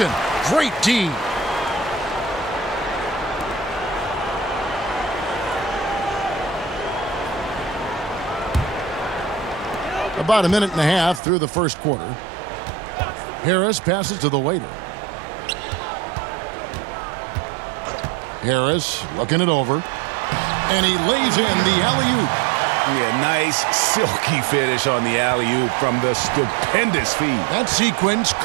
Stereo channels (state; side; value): drops out; left; at 11.2 s